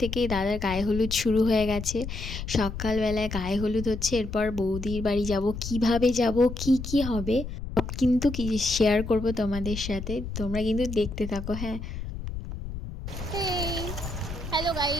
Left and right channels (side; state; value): left; noise; rumble, 7 dB below the sound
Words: দাদার গায়ে হলুদ শুরু হয়ে গেছে। সকালবেলায় গায়ে হলুদ হচ্ছে, এরপর বৌদির বাড়ি যাব, কিভাবে যাব, কি কি হবে সব কিন্তু কি শেয়ার করব তোমাদের সাথে। তোমরা কিন্তু দেখতে থাকো। হ্যাঁ, হ্যালো